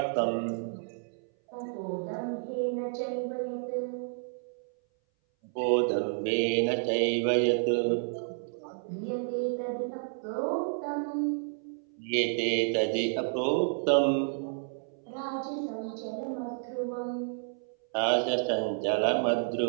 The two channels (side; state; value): left; silent; 57 dB below the other